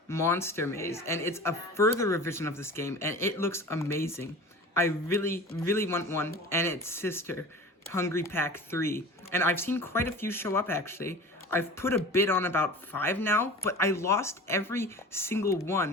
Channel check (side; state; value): both; normal; correlation 0.37